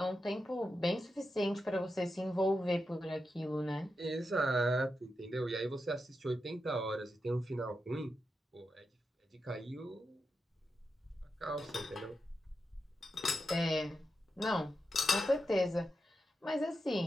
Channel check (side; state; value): both; normal; correlation 0.88